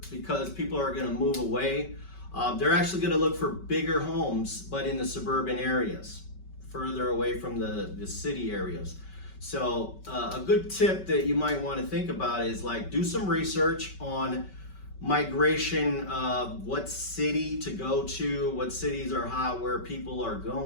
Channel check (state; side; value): late; right; 5.2 ms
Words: because people are going to move away. They're actually going to look for bigger homes, but in the suburban areas, further away from the city areas. So a good tip that you might want to think about is, like, do some research on migration of what city to go to, what cities are hot, where people are